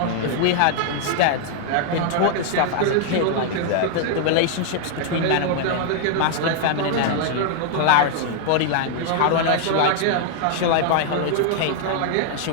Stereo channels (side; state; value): both; different; correlation 0.00